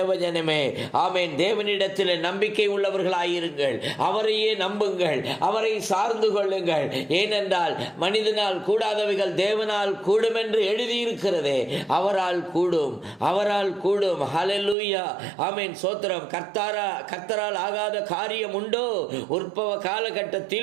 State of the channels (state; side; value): drops out; left; at 14.8 s